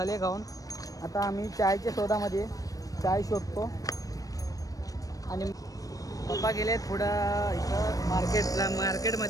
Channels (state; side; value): late; right; 0.17 ms